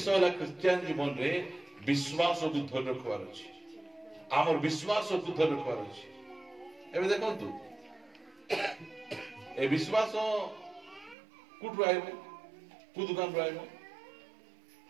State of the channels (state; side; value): drops out; left; at 11.2 s